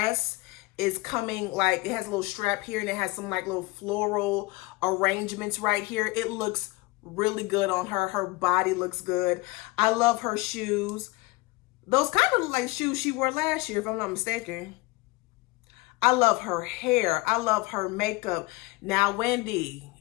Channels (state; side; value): quieter; right; 22.5 dB